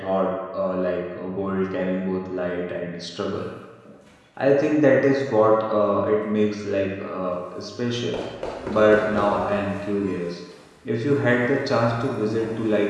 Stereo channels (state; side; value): identical; both; correlation 1.00